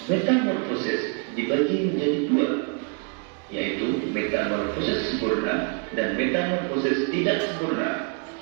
Metamorfosis dibagi menjadi dua, yaitu metamorfosis sempurna dan metamorfosis tidak sempurna.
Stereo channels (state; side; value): quieter; left; 35.1 dB